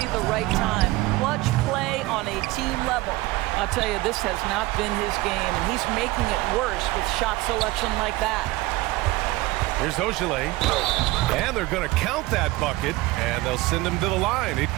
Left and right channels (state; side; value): quieter; left; 19.6 dB